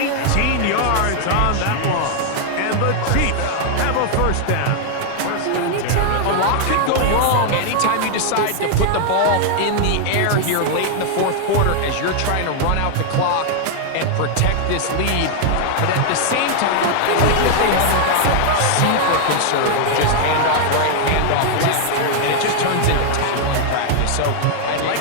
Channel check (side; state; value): both; different; correlation 0.00